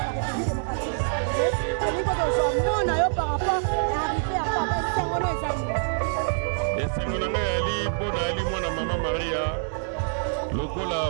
esengo na ngai ali mpo na ali mwana mama Maria lokola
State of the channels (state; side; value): silent; left; 61 dB below the other